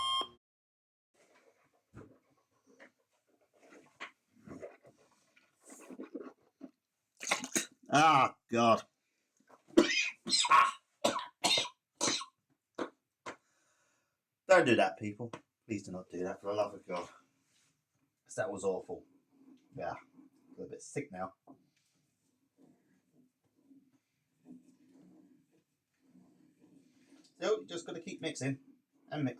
Ah, God. Don't do that, people. Please do not do that, for the love of God. Because that was awful. Yeah, a little bit sick now. So, you just got to keep mixing and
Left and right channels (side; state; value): both; identical; correlation 1.00